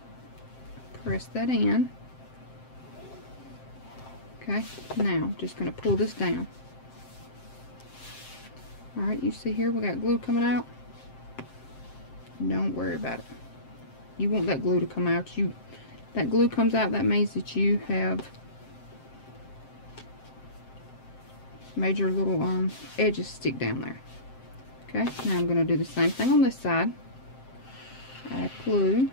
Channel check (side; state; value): right; late; 7.6 ms